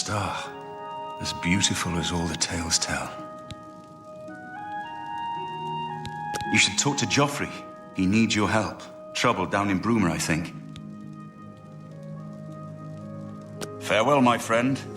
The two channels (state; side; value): identical; both; correlation 1.00